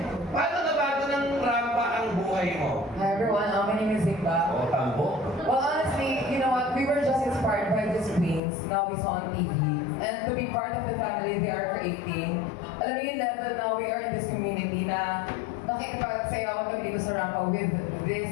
Paano nabago ng Rampa ang buhay mo? Hi everyone, my name is Simba. O, tambo. Well, honestly, you know what? We were just inspired by these queens. Now we saw on TV. And to be part of the family they are creating. Alam mo yung level now we are in this community na nakikipagsayawan kami dito sa Rampa with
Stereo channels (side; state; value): right; drops out; at 8.4 s